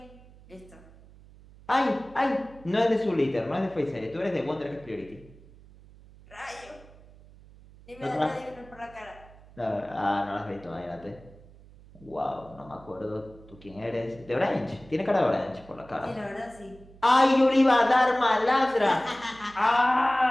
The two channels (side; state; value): right; noise; hum, 23 dB below the sound